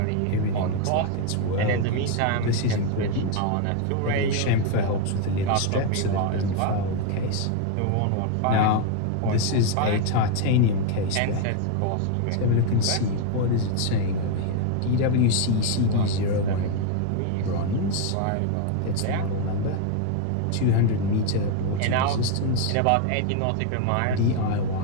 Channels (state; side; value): different; both; correlation 0.01